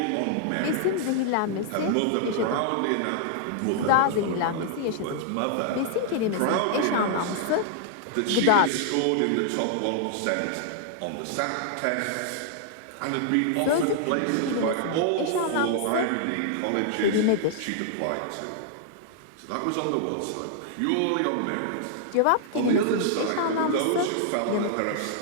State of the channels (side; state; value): both; different; correlation -0.01